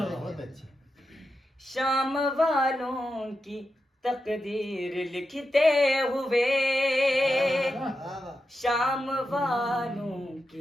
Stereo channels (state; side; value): normal; both; correlation 0.88